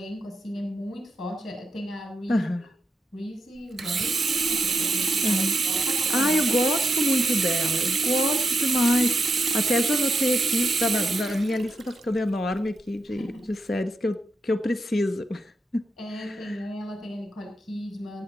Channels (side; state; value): both; normal; correlation 0.85